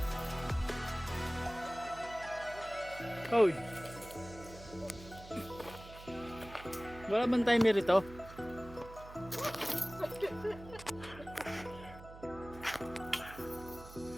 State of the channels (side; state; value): right; noise; hum, 16 dB below the sound